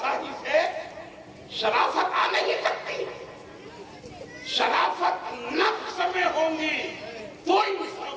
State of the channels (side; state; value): both; identical; correlation 1.00